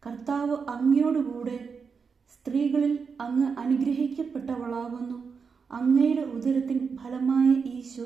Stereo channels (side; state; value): left; quieter; 5.6 dB